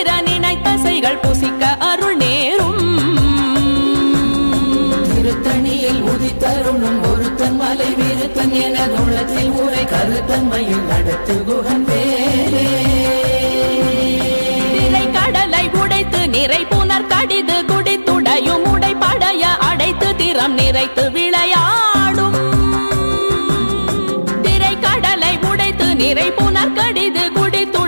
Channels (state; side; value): inverted; both; correlation -1.00